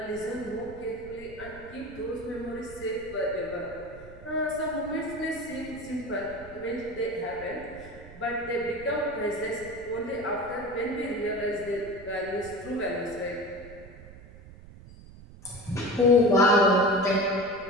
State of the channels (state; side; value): noise; right; rumble, 18 dB below the sound